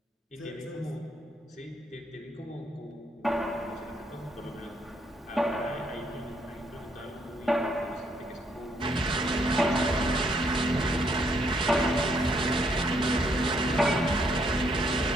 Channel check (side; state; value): both; normal; correlation 0.71